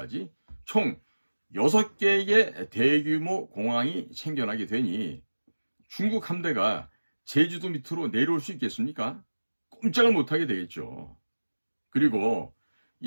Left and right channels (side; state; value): both; inverted; correlation -1.00